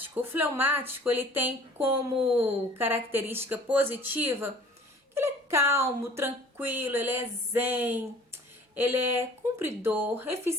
O fleumático, ele tem como característica positiva que ele é calmo, tranquilo, ele é zen, ele é cumpridor,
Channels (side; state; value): both; normal; correlation 0.50